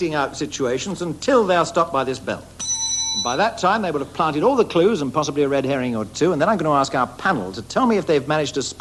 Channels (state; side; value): identical; both; correlation 1.00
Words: out situations until they are stopped by this bell. And by that time, they will have planted all the clues and possibly a red herring or two, and then I'm going to ask our panel to tell me if they've managed to